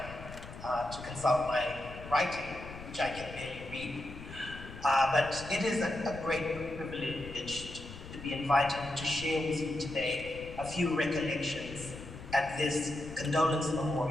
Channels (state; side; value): noise; left; rumble, 13 dB below the sound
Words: to consult my writing, which I can barely read. But it is a great privilege to be invited to share with you today a few recollections at this condolence